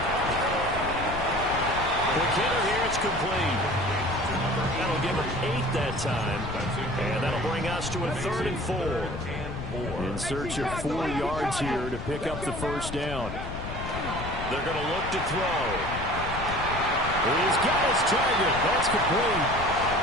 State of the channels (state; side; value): noise; left; rumble, 7 dB below the sound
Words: Quick hitter here, it's complete. That'll give him 8 that time. And that'll bring us to a 3rd and 4. In search of 4 yards here to pick up the 1st down. They're going to look to throw. He's got his target. That's complete.